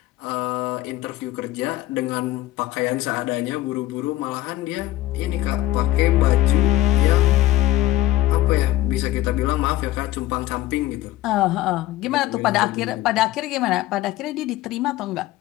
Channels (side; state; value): right; quieter; 16.2 dB